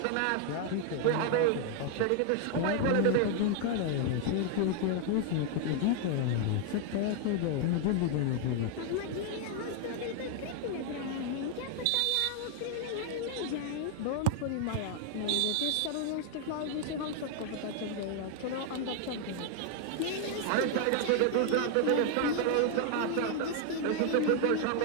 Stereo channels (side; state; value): both; different; correlation 0.00